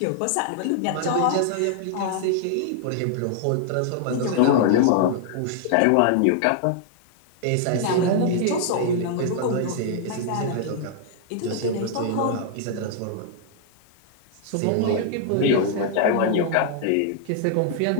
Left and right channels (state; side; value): different; both; correlation -0.01